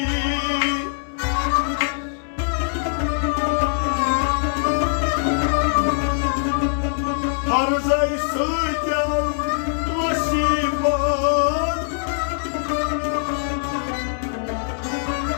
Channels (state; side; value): silent; right; 64 dB below the other